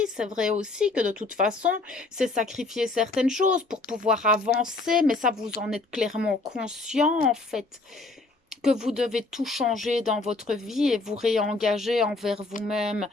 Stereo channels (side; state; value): right; quieter; 3.4 dB